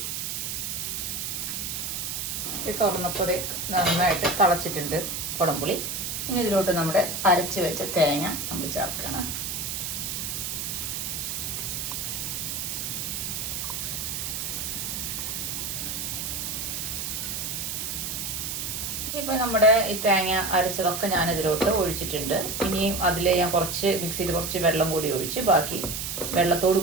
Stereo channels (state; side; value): noise; right; hiss, 3 dB below the sound